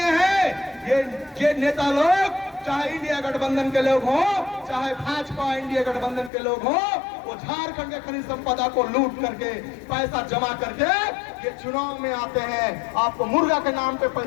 है ये नेता लोग, चाहे इंडिया गठबंधन के लोग हो, चाहे भाजपा इंडिया गठबंधन के लोग हो, वो झारखंड के खनिज संपदा को लूट करके, पैसा जमा करके ये चुनाव में आते हैं। आपको मुर्गा के नाम पे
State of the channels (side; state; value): right; drops out; at 6.3 s